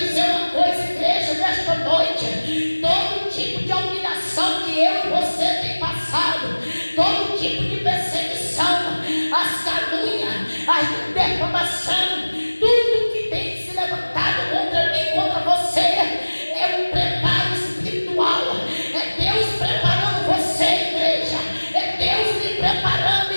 uma coisa, igreja, nesta noite. Todo tipo de humilhação que eu e você tem passado, todo tipo de perseguição, as calúnias, a defamação, tudo que tem se levantado contra mim, contra você, é um preparo espiritual. É Deus preparando você, igreja. É Deus me preparando,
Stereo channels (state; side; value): inverted; both; correlation -1.00